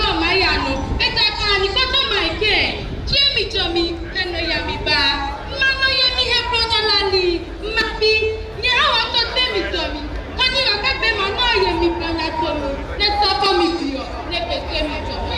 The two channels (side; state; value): both; identical; correlation 1.00